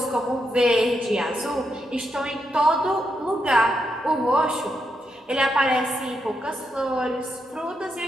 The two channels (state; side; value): normal; both; correlation 0.82